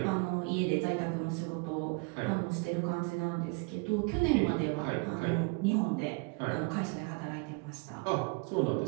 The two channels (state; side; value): quieter; left; 32.2 dB